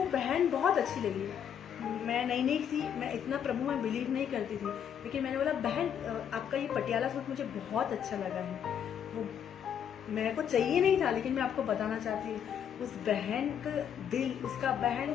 बहन बहुत अच्छी लगी। मैं नई थी, मैं इतना प्रभु में बिलीव नहीं करती थी, लेकिन मैंने बोला बहन आपका ये पटियाला सूट मुझे बहुत अच्छा लगा है। वो मेरे को चाहिए नहीं था, लेकिन मैं आपको बताना चाहती हूँ उस बहन का दिल, उसका बहन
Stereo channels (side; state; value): right; quieter; 8.7 dB